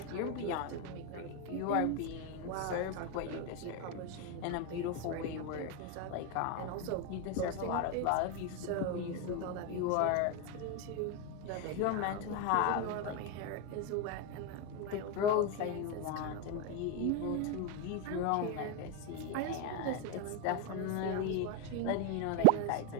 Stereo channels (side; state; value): both; different; correlation 0.02